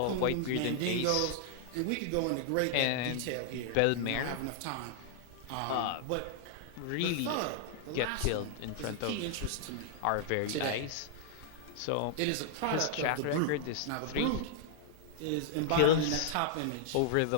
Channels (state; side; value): different; both; correlation -0.01